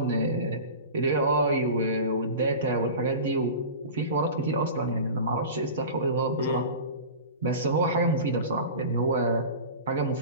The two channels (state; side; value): inverted; both; correlation -0.33